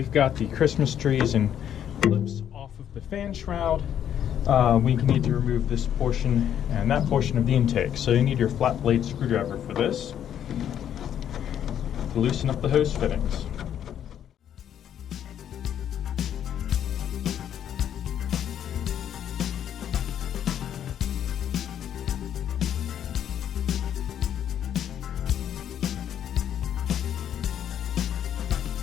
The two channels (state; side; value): quieter; right; 9.8 dB